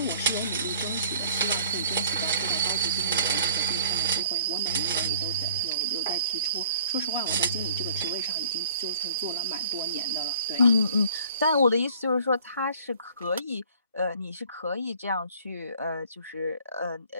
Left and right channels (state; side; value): inverted; both; correlation -0.53